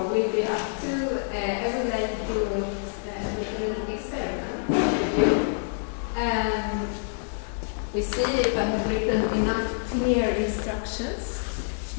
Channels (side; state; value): right; silent; 60 dB below the other